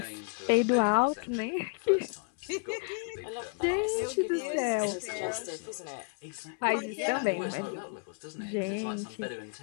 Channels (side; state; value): right; quieter; 37.1 dB